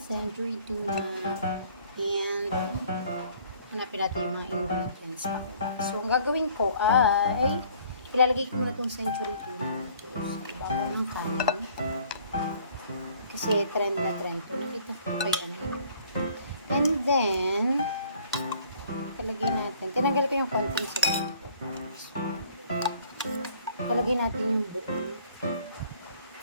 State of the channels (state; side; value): inverted; both; correlation -0.57